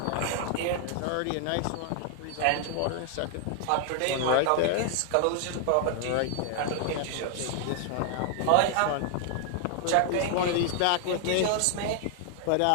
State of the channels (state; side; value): different; both; correlation 0.00